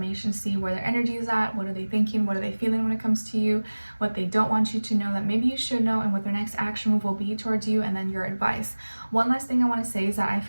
see where their energy is at, what are they thinking, what are they feeling when it comes to you, what they don't want you to know that maybe you should know, and what their next action move will be towards you, and then your advice. One last thing I want to say is that I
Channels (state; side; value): inverted; both; correlation -1.00